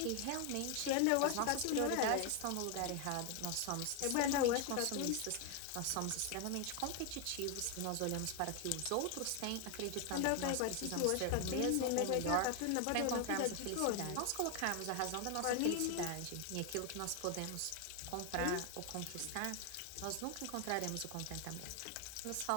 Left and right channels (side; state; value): both; different; correlation 0.01